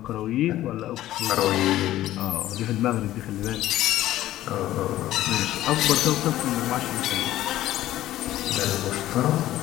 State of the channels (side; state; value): right; quieter; 14.3 dB